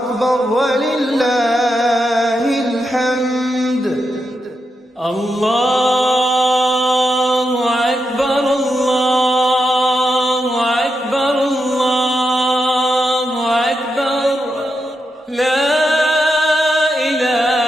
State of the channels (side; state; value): both; normal; correlation 0.85